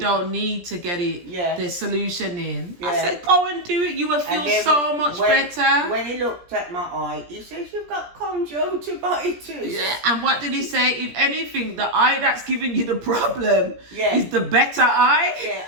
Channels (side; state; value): left; late; 17 ms